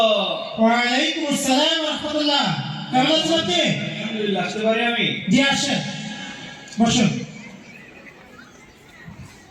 ওয়ালাইকুম আসসালাম রাহমাতুল্লাহ। কেমন আছেন আপনি? আলহামদুলিল্লাহ। আসতে পারি আমি? জি আসেন, বসুন।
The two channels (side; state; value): both; identical; correlation 1.00